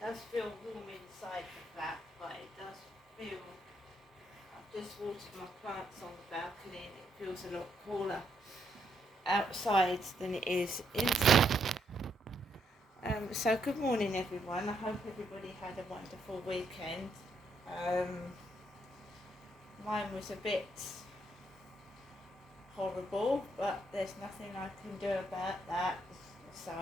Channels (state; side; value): normal; both; correlation 0.75